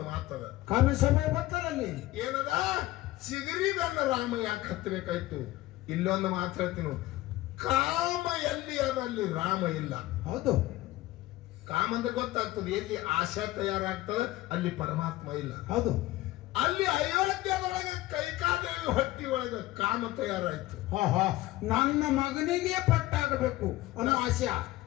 ಮಾತದ. ಕಮ್ಮಿ ಸಮಯ ಬರ್ತದಲ್ಲಿ ಏನದ? ಚಿಗುರಿ ಬೆನ್ನ ರಾಮ ಯಾಕೆ ಹತ್ತಬೇಕಾಯ್ತು? ಇಲ್ಲೊಂದು ಮಾತು ಹೇಳ್ತೀನಿ, ಕಾಮ ಎಲ್ಲಿ ಅದ ಅಲ್ಲಿ ರಾಮ ಇಲ್ಲ. ಹೌದು, ಕಾಮ ಅಂದ್ರೆ ಗೊತ್ತಾಗ್ತದೆ, ಎಲ್ಲಿ ಆಶಾ ತಯಾರಾಗ್ತದೆ ಅಲ್ಲಿ ಪರಮಾತ್ಮ ಇಲ್ಲ. ಹೌದು, ಅಲ್ಲಿ ಅಯೋಧ್ಯದೊಳಗೆ ಕೈಕಾದೇವಿ ಹೊಟ್ಟಿ ಒಳಗೆ ಕಾಮ ತಯಾರಾಯ್ತು. ನನ್ನ ಮಗನಿಗೆ ಪಟ್ಟಾಗಬೇಕು ಅನ್ನೋ ಆಶೆ.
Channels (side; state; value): right; quieter; 17.2 dB